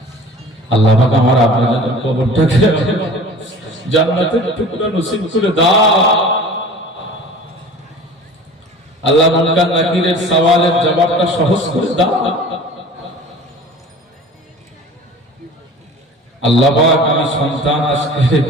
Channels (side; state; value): both; normal; correlation 0.42